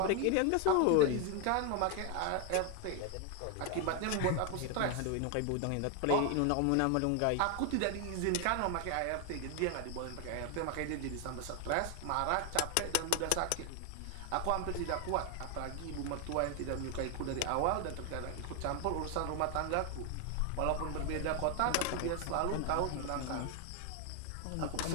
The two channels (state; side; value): different; both; correlation 0.01